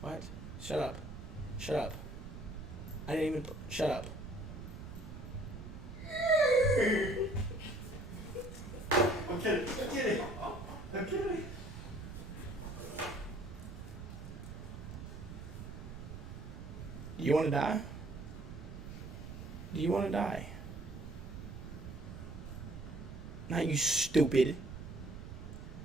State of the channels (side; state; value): right; noise; rumble, 10 dB below the sound